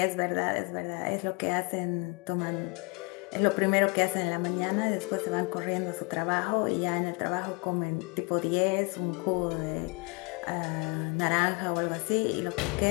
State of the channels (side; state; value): right; quieter; 31.0 dB